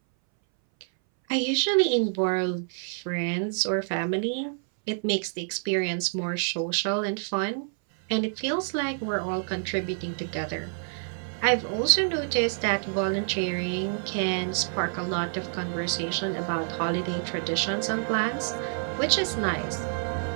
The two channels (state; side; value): silent; left; 60 dB below the other